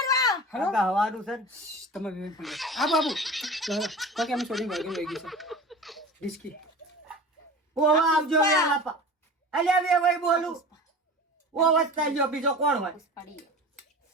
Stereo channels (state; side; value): normal; both; correlation 0.35